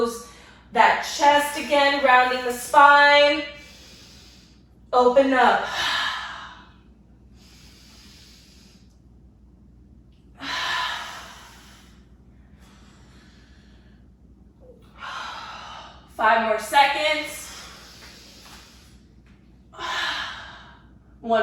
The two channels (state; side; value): identical; both; correlation 1.00